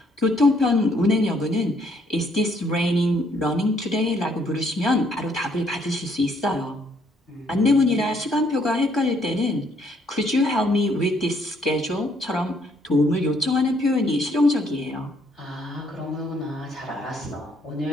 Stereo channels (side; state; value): both; normal; correlation 0.68